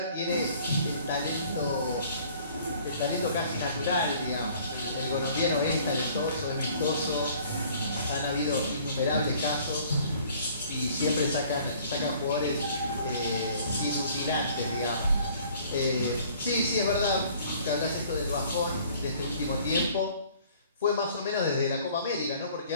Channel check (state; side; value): inverted; both; correlation -0.55